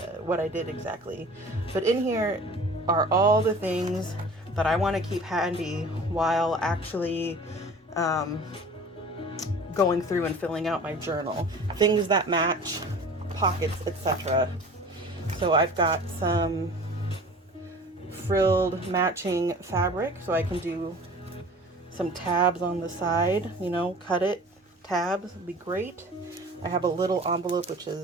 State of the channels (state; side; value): normal; both; correlation 0.43